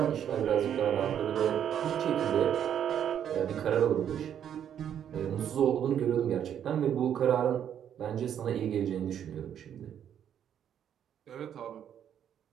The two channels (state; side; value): quieter; left; 9.4 dB